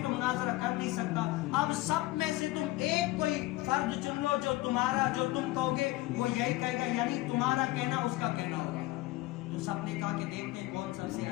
تو مناظرہ کر نہیں سکتا، اب سب میں سے تم ایک کوئی فرد چن لو جو تمہارا، جو تم کہو گے وہ یہی کہے گا، یعنی تمہارا کہنا اس کا کہنا ہوگا. تو سب نے کہا کہ دیکھتے ہیں کون سب سے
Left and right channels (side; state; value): right; quieter; 18.4 dB